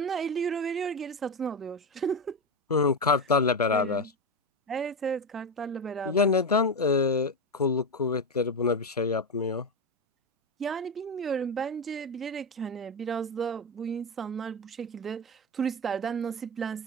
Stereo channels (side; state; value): both; normal; correlation 0.14